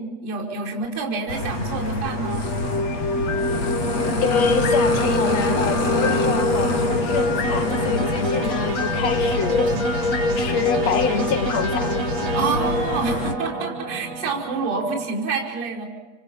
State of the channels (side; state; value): right; late; 8.3 ms